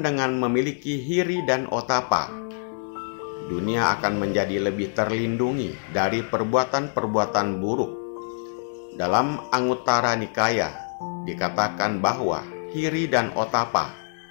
dengan memiliki hiri dan otapa, dunia akan menjadi lebih terlindungi dari perbuatan-perbuatan buruk. Dalam Anguttara Nikaya dikatakan bahwa hiri dan otapa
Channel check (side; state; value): right; silent; 62 dB below the other